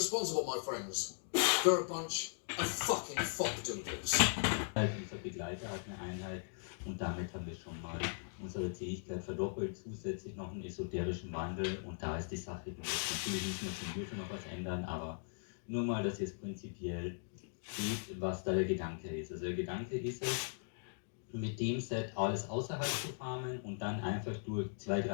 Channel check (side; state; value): right; silent; digital silence